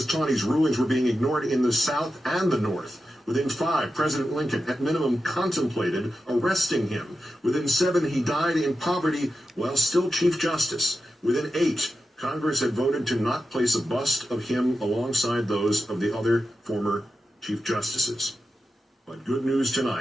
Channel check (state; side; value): normal; both; correlation 0.90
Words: Taney's rulings were being ignored in the South and the North. Within 5, President Lincoln, at minimum, contemplated arresting him. Within 7, he died in poverty while still Chief Justice. Within 8, Congress had voted to not place a bust of him alongside those of the other former Chief Justices. But good news